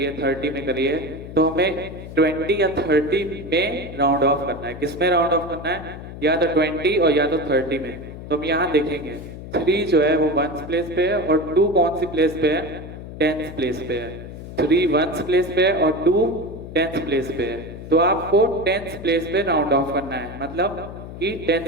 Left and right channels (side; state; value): left; noise; hum, 12 dB below the sound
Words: 30 में करिए. तो हमें 20 या 30 में राउंड ऑफ करना है. किस में राउंड ऑफ करना है? या तो 20 और या तो 30 में. तो हम यहाँ देखेंगे 3 जो है वो 1s प्लेस पे है और 2 कौन सी प्लेस पे है? 10s प्लेस पे है. 3 1s प्लेस पे है और 2 10s प्लेस पे है. तो आपको 10s प्लेस पे राउंड ऑफ करना है, मतलब कि